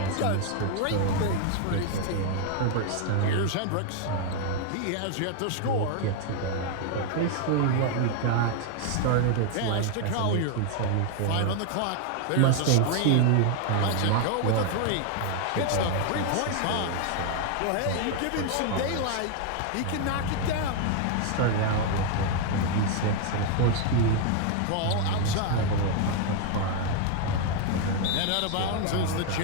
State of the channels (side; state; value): both; different; correlation 0.00